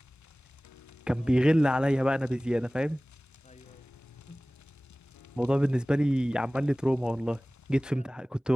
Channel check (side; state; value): both; normal; correlation 0.98